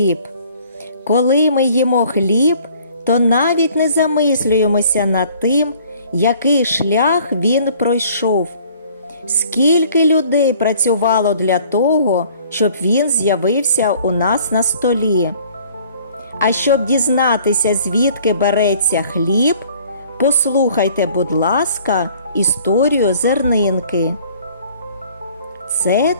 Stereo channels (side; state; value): both; inverted; correlation -0.55